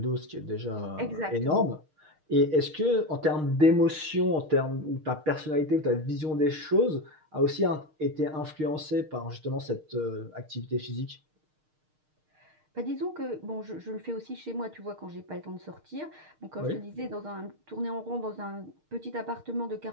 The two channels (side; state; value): left; late; 6.5 ms